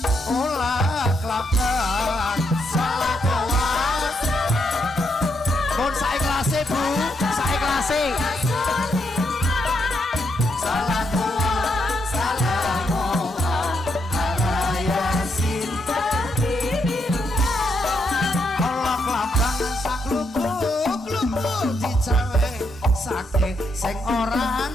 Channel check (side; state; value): both; normal; correlation 0.78